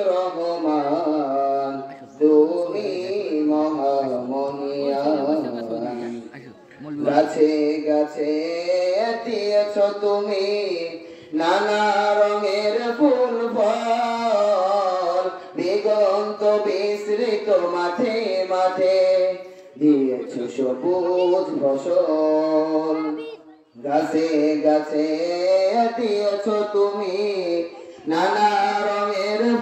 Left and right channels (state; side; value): identical; both; correlation 1.00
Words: রহমান, তুমি মহামহিয়ান। গাছে গাছে দিয়েছ তুমি নানা রঙের ফুল ফল, দিগন্ত বিস্তৃত মাঠে মাঠে দিয়েছ সবুজ ফসল। গাছে গাছে দিয়েছ তুমি নানা রঙের